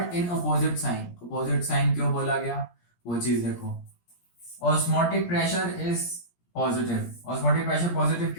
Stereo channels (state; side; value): late; right; 17 ms